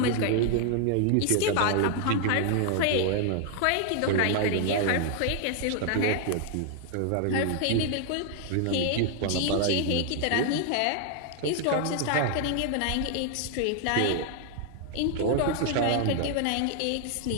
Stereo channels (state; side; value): different; both; correlation 0.00